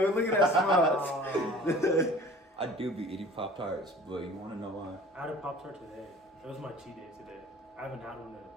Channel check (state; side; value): normal; both; correlation 0.46